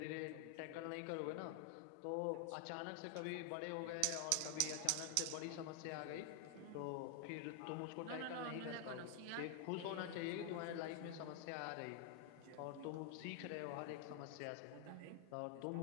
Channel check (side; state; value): both; different; correlation 0.00